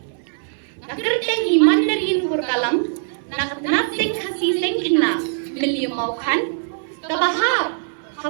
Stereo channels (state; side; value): silent; left; digital silence